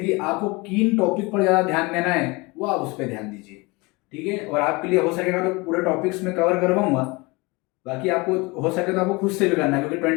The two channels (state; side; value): quieter; right; 25.4 dB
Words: आपको किन टॉपिक पर ज़्यादा ध्यान देना है वो आप उस पर ध्यान दीजिए, ठीक है। और आपके लिए हो सकेगा तो पूरे टॉपिक्स में कवर करवाऊंगा, बाकी आपको हो सके तो आपको खुद से भी करना है, क्योंकि